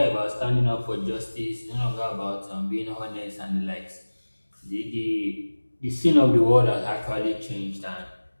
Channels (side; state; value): both; inverted; correlation -1.00